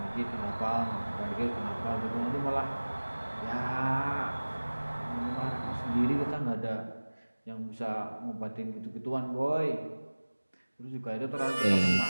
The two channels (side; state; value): both; inverted; correlation -1.00